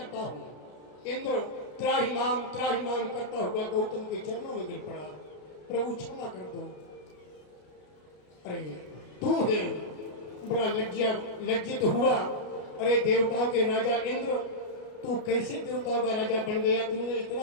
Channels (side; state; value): right; late; 33 ms